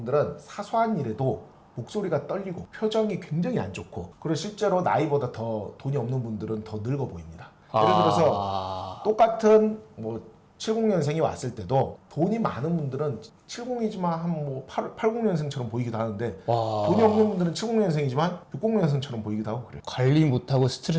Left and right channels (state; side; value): identical; both; correlation 1.00